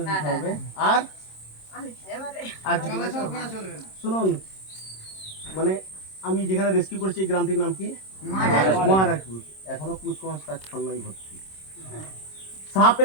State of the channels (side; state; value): right; late; 26 ms